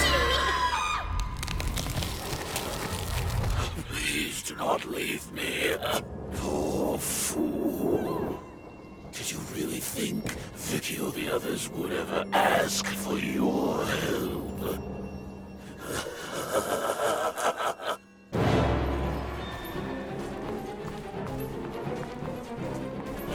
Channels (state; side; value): identical; both; correlation 1.00